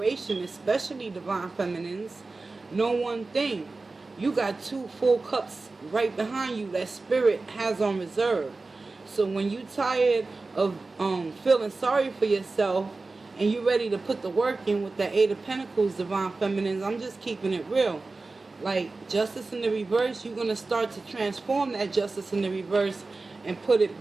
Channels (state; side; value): quieter; left; 3.6 dB